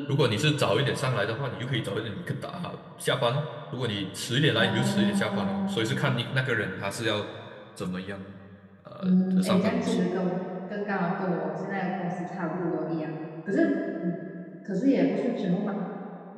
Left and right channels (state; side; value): identical; both; correlation 1.00